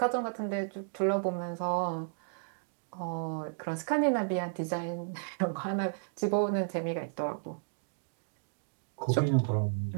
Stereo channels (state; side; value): silent; left; digital silence